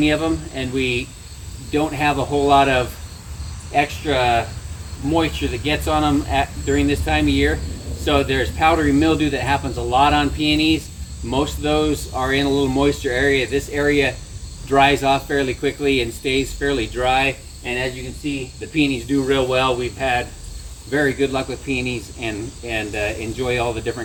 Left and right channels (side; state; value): both; identical; correlation 1.00